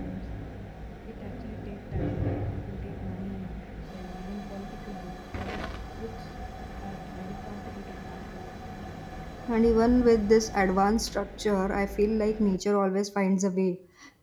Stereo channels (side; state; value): both; identical; correlation 1.00